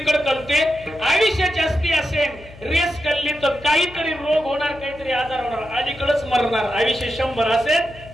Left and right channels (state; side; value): noise; left; hum, 20 dB below the sound